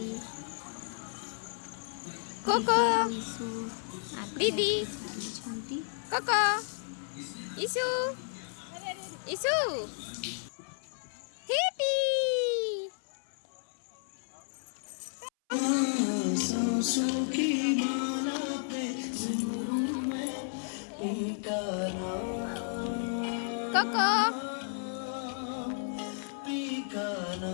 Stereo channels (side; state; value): right; silent; 56 dB below the other